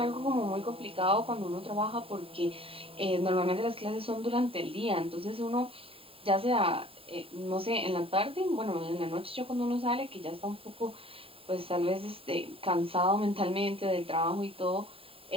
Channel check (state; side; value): late; left; 0.27 ms